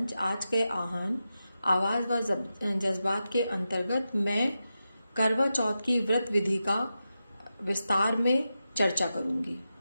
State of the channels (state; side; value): inverted; both; correlation -0.90